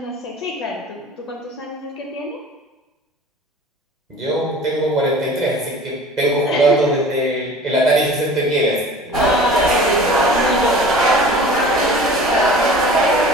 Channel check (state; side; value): normal; both; correlation 0.42